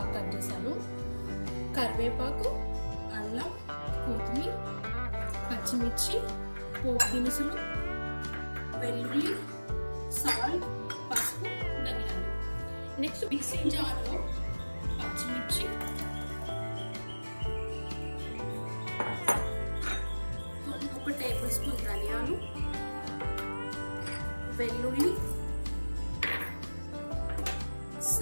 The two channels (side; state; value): both; inverted; correlation -1.00